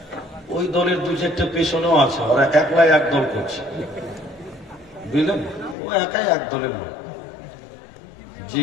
ওই দলের দু চারটা পেছনেও আছে, ওরা একলাই এক দল করছে, বুঝলেন? ও একাই এক দলের লোক।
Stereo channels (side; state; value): right; drops out; at 5.8 s